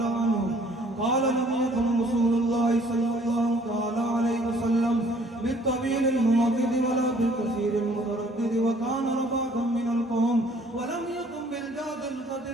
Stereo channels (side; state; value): both; normal; correlation 0.58